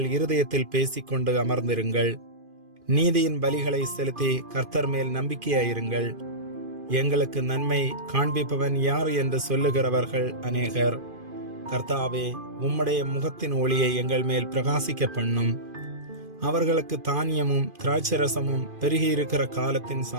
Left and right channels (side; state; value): left; late; 2.5 ms